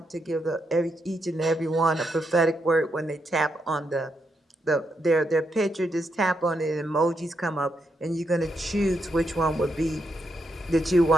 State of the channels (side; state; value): both; normal; correlation 0.81